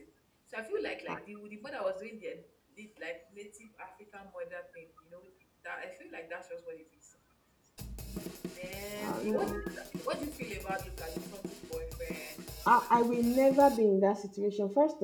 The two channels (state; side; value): identical; both; correlation 1.00